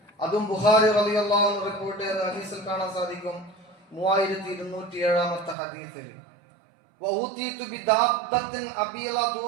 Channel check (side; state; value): left; drops out; at 5.6 s